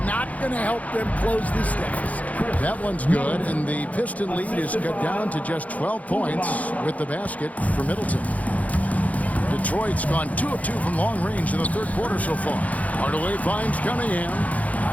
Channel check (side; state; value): right; late; 0.071 ms